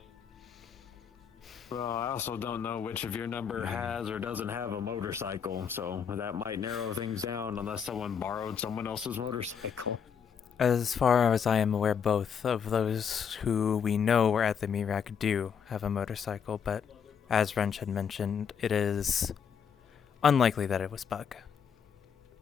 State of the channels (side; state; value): right; quieter; 7.2 dB